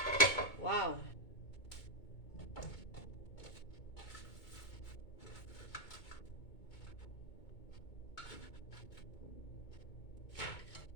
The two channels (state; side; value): late; right; 2.2 ms